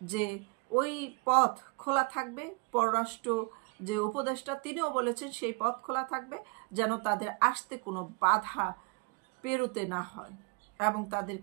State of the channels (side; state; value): left; quieter; 30.6 dB